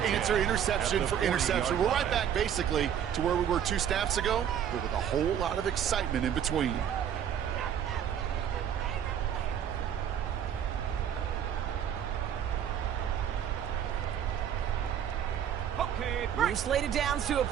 answer interception for interception. We're right back, basically, to where we were 2 snaps ago, but with a whole lot of excitement in between. New slated downs to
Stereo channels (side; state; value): left; quieter; 9.2 dB